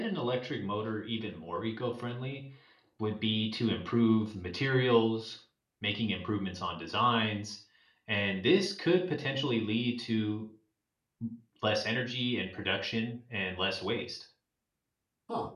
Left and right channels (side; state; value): both; identical; correlation 1.00